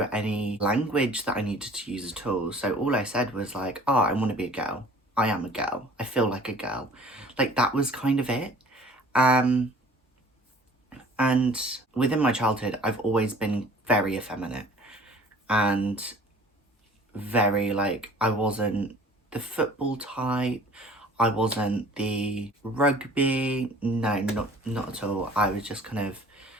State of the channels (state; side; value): normal; both; correlation 0.50